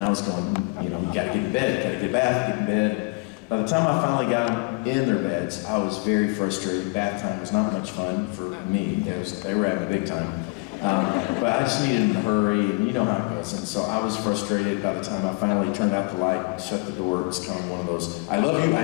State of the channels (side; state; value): right; quieter; 30.0 dB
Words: was going, you know, you gotta get in bed, gotta get a bath, get in bed. By the time I finally got them in their beds, I was very frustrated. Bath time was not much fun for me. They were having a big time. But I just needed to hurry, and you know how it goes. And so I was frustrated by the time I finally turned out the light, shut the door. It was kind of one of those, I love you,